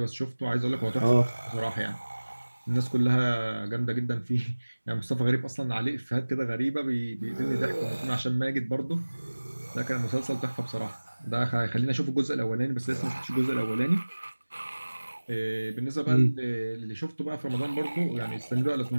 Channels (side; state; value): both; inverted; correlation -1.00